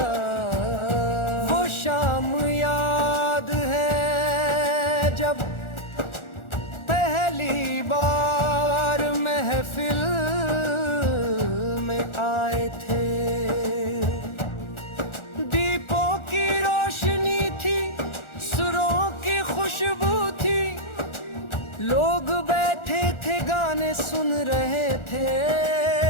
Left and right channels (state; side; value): late; right; 1.4 ms